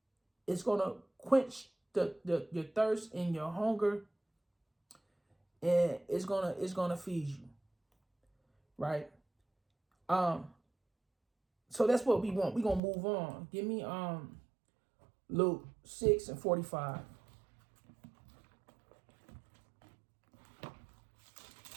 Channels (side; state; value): left; drops out; at 12.8 s